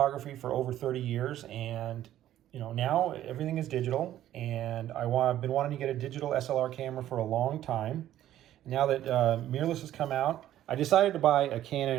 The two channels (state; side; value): quieter; left; 12.6 dB